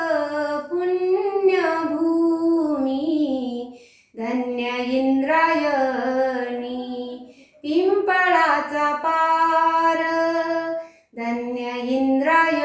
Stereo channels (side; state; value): both; identical; correlation 1.00